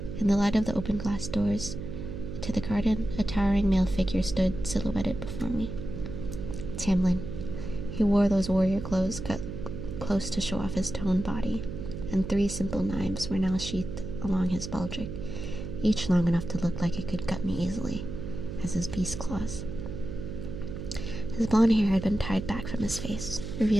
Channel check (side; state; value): right; noise; hum, 7 dB below the sound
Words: In the light of the open glass doors to the garden, a towering male figure stood silhouetted before me. Tamlin. He wore those warrior clothes cut close to show off his toned body, and 3 simple knives were now sheathed along his baldric, each long enough to look like it could cut me easily, as his beast claws. His blonde hair had been tied back from his face,